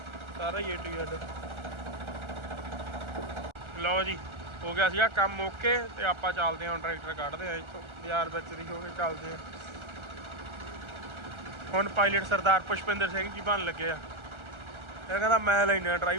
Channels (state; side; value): late; left; 1.3 ms